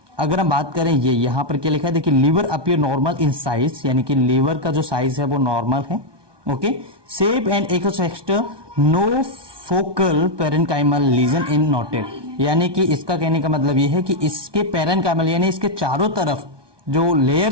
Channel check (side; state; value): left; late; 1.2 ms